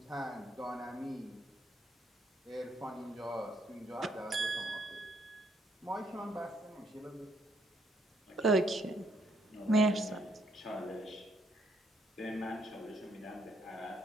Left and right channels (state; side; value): normal; both; correlation 0.71